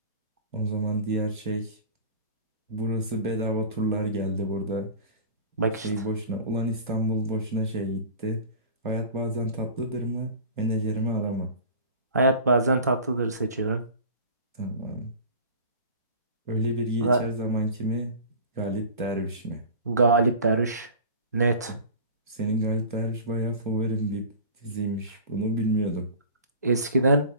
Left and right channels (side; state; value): both; inverted; correlation -0.39